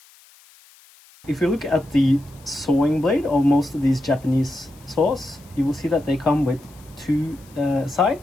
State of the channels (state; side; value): noise; left; hiss, 27 dB below the sound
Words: If you look at the sewing blade of most of these Japanese saws, you will see that they come with two